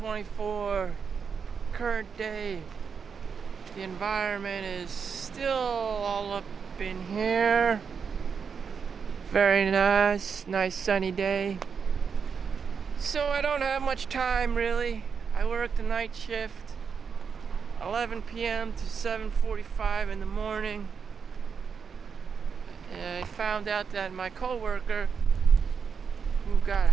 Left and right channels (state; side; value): quieter; left; 6.2 dB